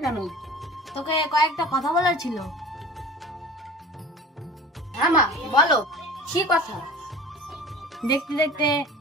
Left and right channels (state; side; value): normal; both; correlation 0.40